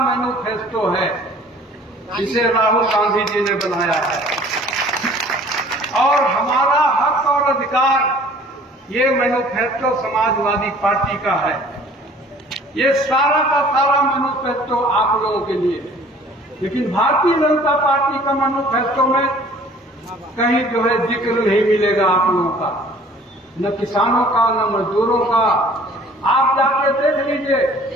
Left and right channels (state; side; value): normal; both; correlation 0.52